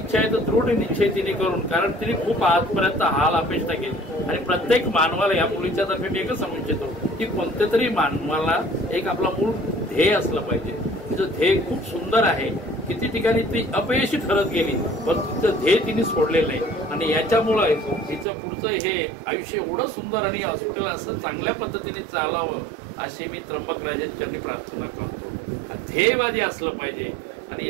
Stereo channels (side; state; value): left; drops out; at 18.2 s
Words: आहे तर दृढ निश्चय तिने करून, कारण तिने खूप आजपर्यंत हाल अपेक्षा केली आणि प्रत्येक मानवाला या मुलीच्या तर्फे मी एकच सांगू इच्छितो की कोणत्या तरी मानवाला एक आपला मूळ ध्येय असलं पाहिजे. तिचं ध्येय खूप सुंदर आहे. किती ठिकाणी ती अपयशी ठरत गेली पण तिचं ध्येय तिने सोडलेलं नाही आणि याच्यामुळे तिचं पुढचं हे आयुष्य एवढं सुंदर आणि हॉस्पिटल असं चांगल्या पद्धतीने चालावं अशी मी त्र्यंबक राजांच्या प्रार्थना करतो. ध्येयवादी असलं पाहिजे आणि हे